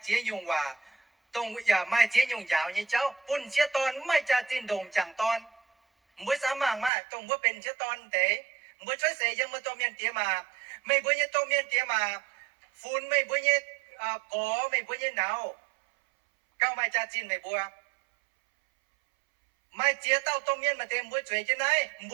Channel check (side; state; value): left; drops out; at 6.9 s